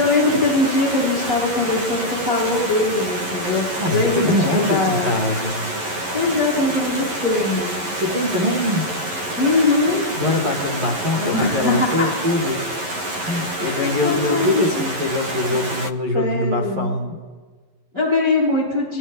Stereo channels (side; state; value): left; late; 11 ms